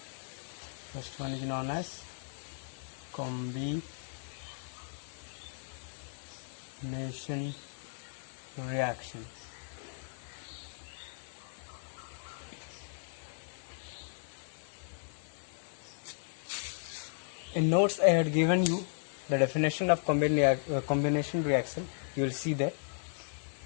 First one is known as combination reaction. In notes I had given you the definition of combination reaction. You will see that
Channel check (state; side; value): silent; right; digital silence